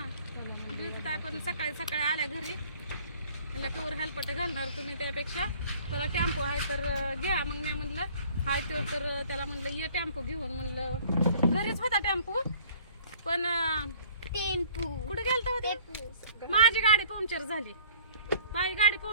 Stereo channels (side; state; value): both; inverted; correlation -0.54